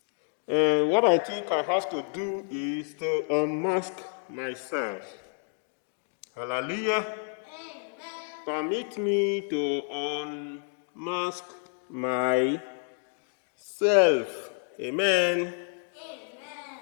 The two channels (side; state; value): right; silent; 57 dB below the other